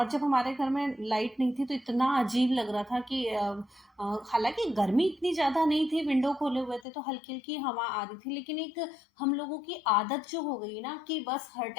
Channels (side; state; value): right; drops out; at 6.9 s